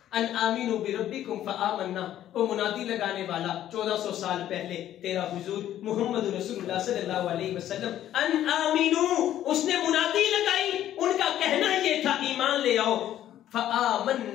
ان آمینوا بربکم فآمنا، وہ منادی لگانے والا 1400 سال پہلے تیرا حضور محمد رسول اللہ صلی اللہ علیہ وسلم، ان آمینوا، اس نے منادی لگائی، ان کا کہنا یہ تھا ایمان لے آؤ.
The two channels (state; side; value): quieter; right; 12.0 dB